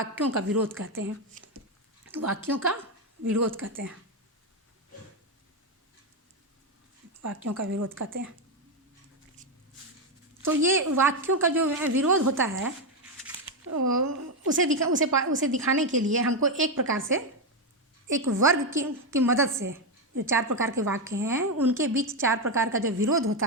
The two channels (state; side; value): normal; both; correlation 0.07